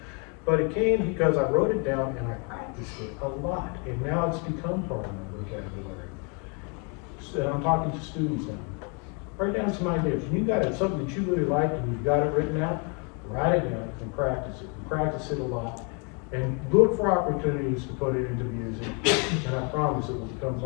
But it came because I wrote it down and I practiced it a lot, and now it's become part of my vocabulary. So I'm talking to students now. Write down some ideas. When you got it, something that you really like and you've got it written out, write it down and practice it. Practice it a lot. And look for opportunities to put it into music, and I promise it will become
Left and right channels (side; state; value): right; quieter; 35.5 dB